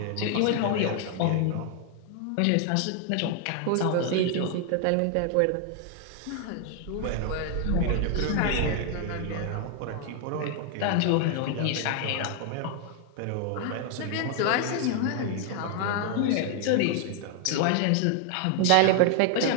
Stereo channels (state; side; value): different; both; correlation 0.00